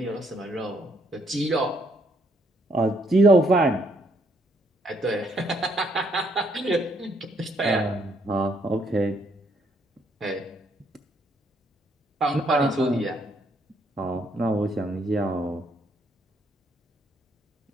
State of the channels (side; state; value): both; normal; correlation 0.71